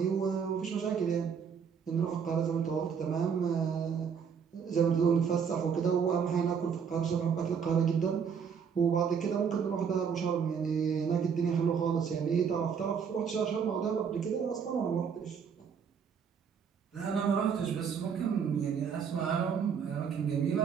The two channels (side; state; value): left; quieter; 6.8 dB